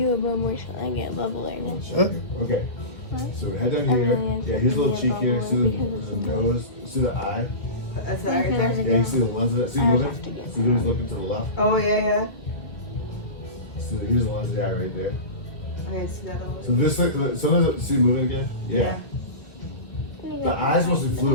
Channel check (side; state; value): right; late; 2.1 ms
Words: a bubble, so I get a bubble right now. Okay. So head down here. Yeah, here's a little cheek here. See the nose. See the eye. That's it right there. Yeah, you see the lens of it. See moving. See who's looking to the left. Oh yeah. So here's the lens of the eye right there. Okay, see that little. So this, sometimes see moving again. Yeah. The eye's mostly